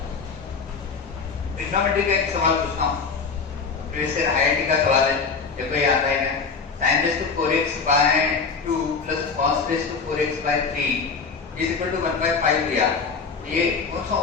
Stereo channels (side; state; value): right; quieter; 5.2 dB